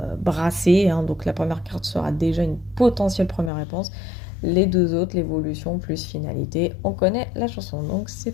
brassé, hein. Donc la première carte sera déjà une potentielle première réponse. Les deux autres, l'évolution plus finalité, on connaît la chanson. Donc c'est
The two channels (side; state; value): right; drops out; at 3.5 s